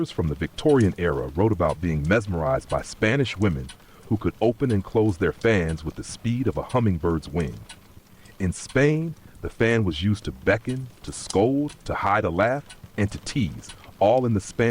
from the Victorian era wrote about being mesmerized by Spanish women who could open and close their fans with the speed of a hummingbird's wing. In Spain, the fan was used to beckon, to scold, to hide a laugh, and to tease, all in the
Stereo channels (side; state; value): both; identical; correlation 1.00